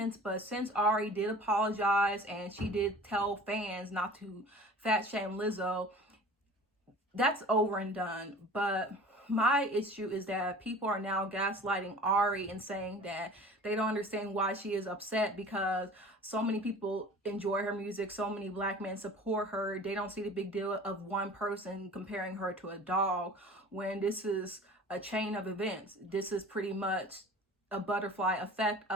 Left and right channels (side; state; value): both; normal; correlation 0.43